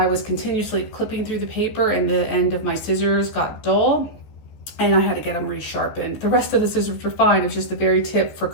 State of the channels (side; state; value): right; late; 14 ms